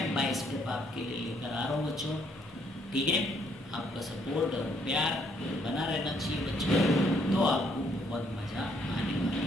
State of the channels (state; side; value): normal; both; correlation 0.68